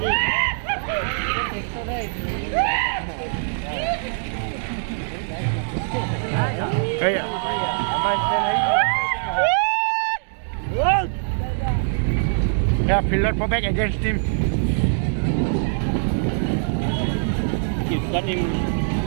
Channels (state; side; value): silent; left; digital silence